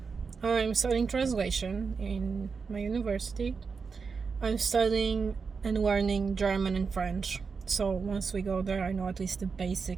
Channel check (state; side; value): quieter; left; 5.2 dB